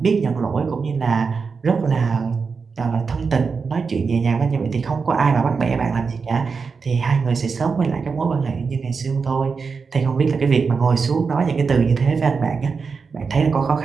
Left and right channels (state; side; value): quieter; left; 5.1 dB